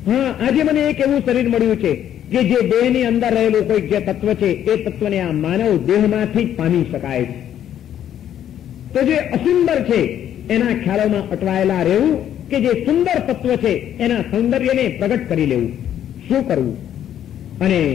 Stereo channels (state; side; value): quieter; right; 10.5 dB